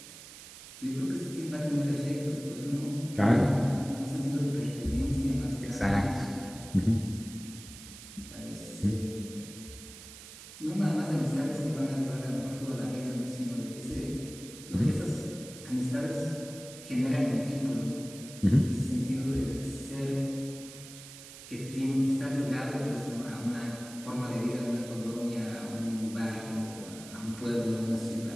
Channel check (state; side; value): noise; right; hiss, 15 dB below the sound